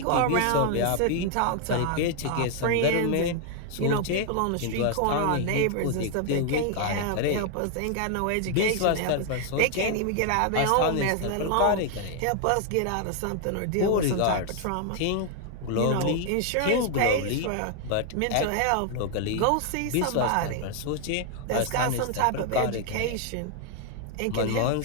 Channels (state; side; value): different; both; correlation 0.00